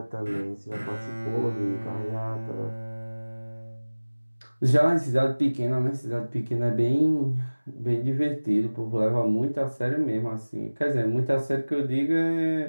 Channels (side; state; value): both; inverted; correlation -1.00